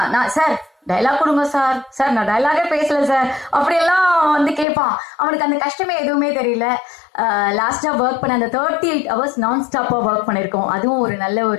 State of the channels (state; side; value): drops out; right; at 4.7 s